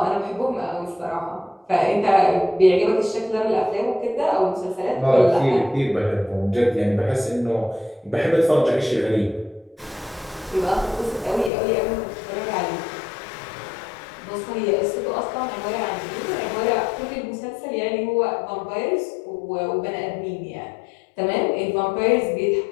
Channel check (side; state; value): right; drops out; at 11.5 s